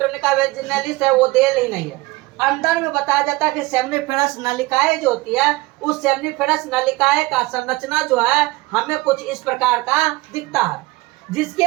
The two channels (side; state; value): left; quieter; 21.1 dB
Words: वेजिनालिस है वो देल ही नहीं है। अंदर में बताया जाता है कि सेमिनिफेरस नलिकाएं जो होती है उस सेमिनिफेरस नलिकाएं का संरचना जो है हमें कुछ इस प्रकार का दिखता है, जिसके